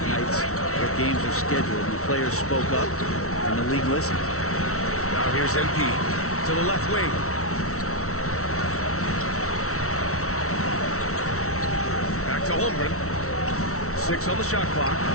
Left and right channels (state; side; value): late; right; 0.63 ms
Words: nights where games are scheduled. And the players spoke up, and the league listened. Now here's MP to the left wing. Back to Holmgren. 6 on the shot clock.